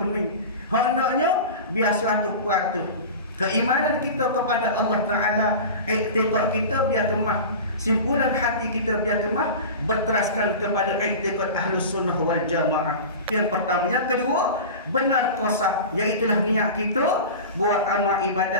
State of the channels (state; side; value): inverted; both; correlation -0.31